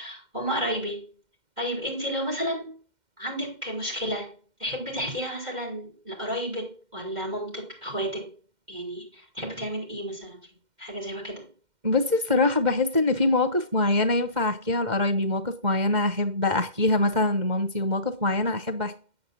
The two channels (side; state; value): left; late; 2.1 ms